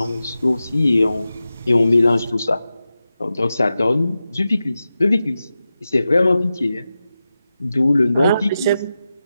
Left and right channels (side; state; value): both; inverted; correlation -0.92